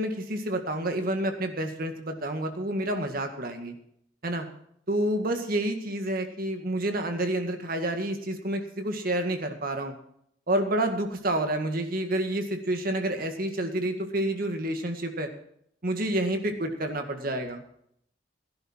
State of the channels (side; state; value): both; normal; correlation 0.35